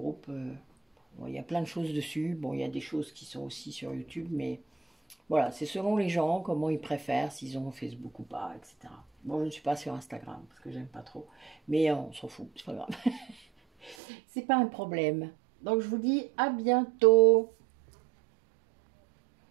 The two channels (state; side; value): drops out; left; at 14.0 s